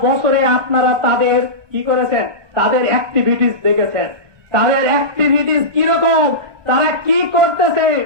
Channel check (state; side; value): late; left; 1.2 ms